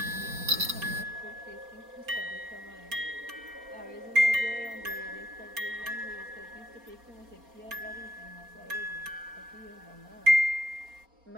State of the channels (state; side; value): late; left; 4.3 ms